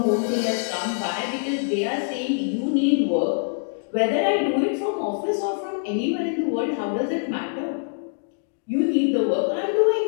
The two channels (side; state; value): right; silent; digital silence